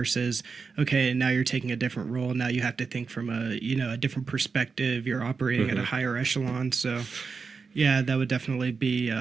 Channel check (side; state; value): left; quieter; 5.0 dB